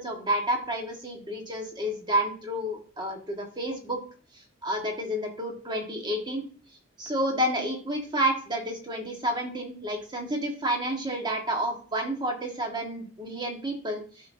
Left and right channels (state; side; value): normal; both; correlation 0.08